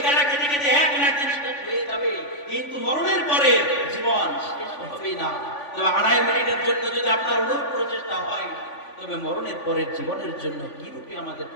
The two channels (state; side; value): late; right; 3.5 ms